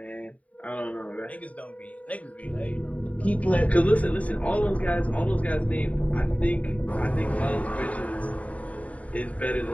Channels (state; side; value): late; right; 0.068 ms